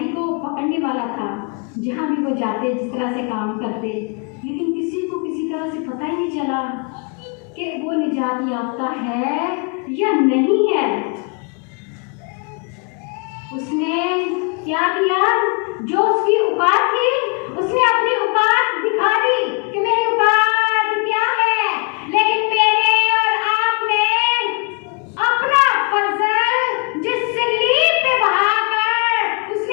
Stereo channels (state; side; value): quieter; right; 34.6 dB